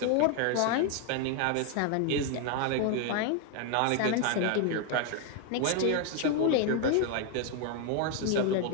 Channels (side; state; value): both; different; correlation 0.01